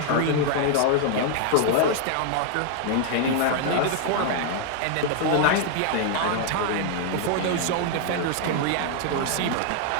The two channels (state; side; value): different; both; correlation 0.00